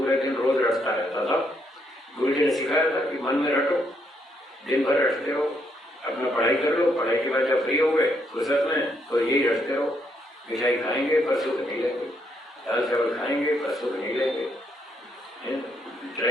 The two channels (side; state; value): both; normal; correlation 0.75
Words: दिन रोज रटता रहता था। गुरु जी ने सिखाया था कि मन में रटो, दिन भर रटते रहो, अपना पढ़ाई कर लो, पढ़ाई के बाद जब फ्री हो गए फुर्सत में तो यही रटते रहो। मिठाई खाएंगे पर सुख नहीं लेंगे, दाल चावल खाएंगे पर सुख नहीं लेंगे,